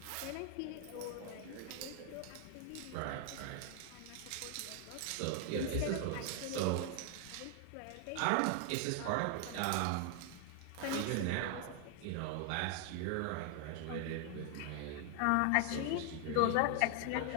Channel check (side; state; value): both; different; correlation 0.00